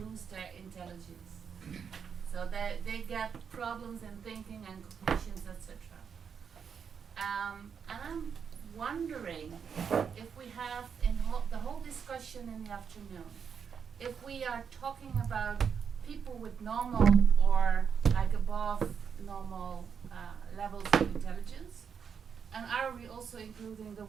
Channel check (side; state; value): left; quieter; 6.8 dB